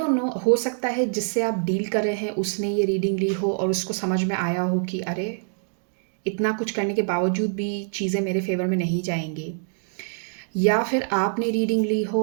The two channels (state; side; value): silent; left; digital silence